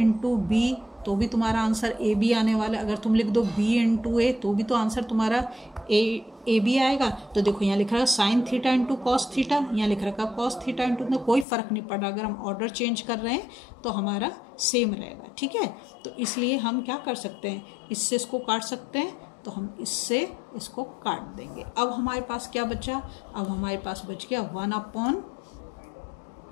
बी, तो भी तुम्हारा आंसर ए बी आने वाला है। अगर तुम लिख दो b इंटू ए, तो भी तो आंसर तुम्हारा ए बी आएगा। तो देखो यहाँ लिख रहा है sine theta into cos theta, यहाँ लिख रखा है कॉस थीटा इंटू, तो कोई फ़र्क नहीं पड़ रहा। अगर हम ऑर्डर चेंज कर रहे हैं तो हमारा सेम रहेगा, ठीक है। तो इसलिए हम क्या कर सकते हैं, इससे इसको काट सकते हैं, तो हम इससे इसको काट देंगे। अब हमारे पास क्या बचा, अब हमारे पास बच गया 1 अपॉन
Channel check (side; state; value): right; drops out; at 11.5 s